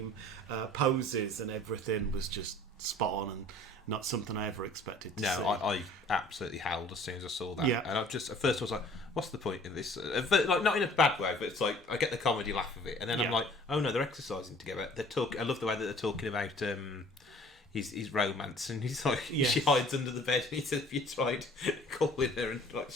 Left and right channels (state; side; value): normal; both; correlation 0.51